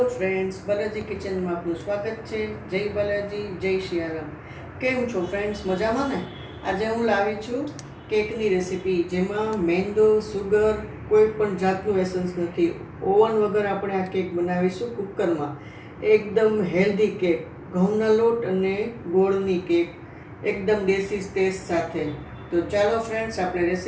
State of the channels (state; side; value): identical; both; correlation 1.00